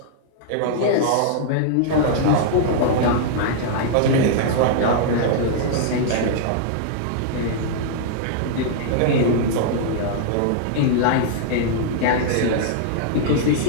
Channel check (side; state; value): both; different; correlation -0.01